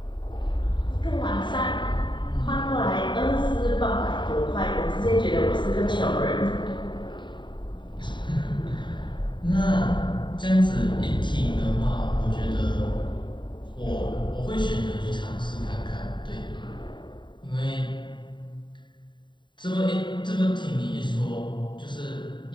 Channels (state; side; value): late; right; 0.23 ms